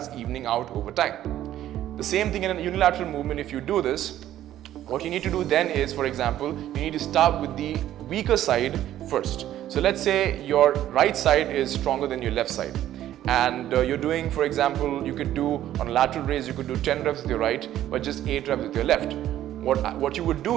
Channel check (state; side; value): quieter; left; 12.6 dB